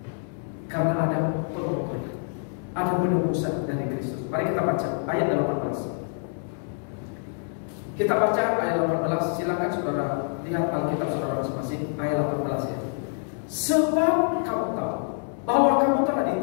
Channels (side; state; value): right; silent; 61 dB below the other